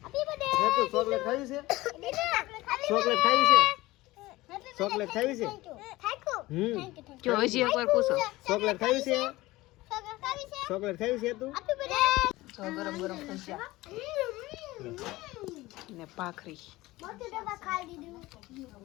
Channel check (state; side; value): quieter; right; 19.0 dB